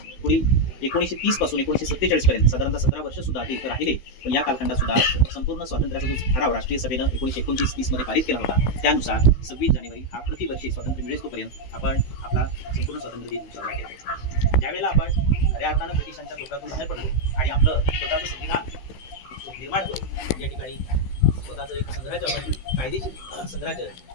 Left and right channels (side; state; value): right; late; 16 ms